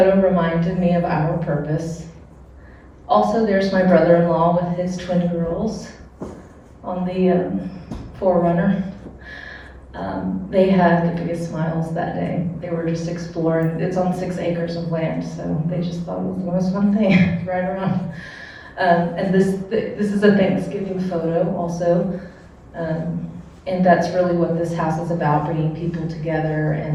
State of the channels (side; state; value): both; identical; correlation 1.00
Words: reminded me of our purpose. Also, there's my brother-in-law with his twin girls on the Forerunner. They had the biggest smiles that day. They were just exploring. It's on 6 acres of land, so they just thought it was the most fun thing to ride around. And this is a Thanksgiving photo also. And that's really what this house is about, bringing people together,